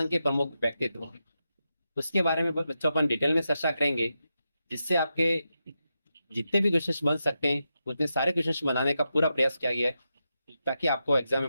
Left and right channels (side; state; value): both; inverted; correlation -0.88